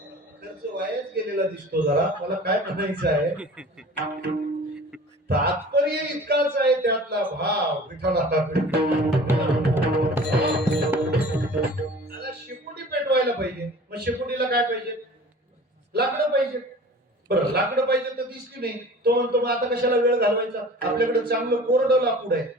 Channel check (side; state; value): both; normal; correlation 0.43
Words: खर्च वायाच गेलेला दिसतो जरा. मला काय म्हणायचं आहे, तात्पर्य इतकाच आहे त्यातला भाव. विठ्ठला. शेकोटी पेटवायला पाहिजे, मग शेकोटीला काय पाहिजे? लाकडं पाहिजे. बरं, लाकडं पाहिजे तर दिसली नाही, तो म्हणतो मग आता कशाला वेळ घालवायचा, आपल्याकडे चांगलं कोरडं लाकूड आहे.